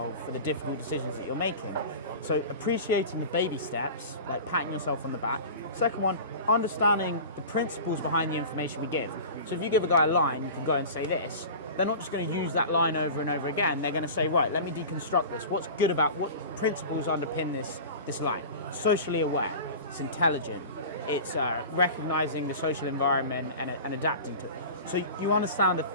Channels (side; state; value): both; inverted; correlation -0.34